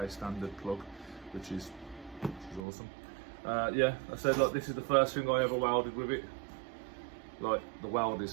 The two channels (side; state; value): left; drops out; at 2.7 s